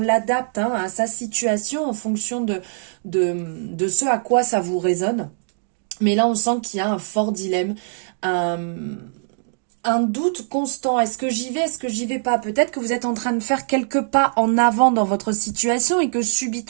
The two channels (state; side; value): silent; left; digital silence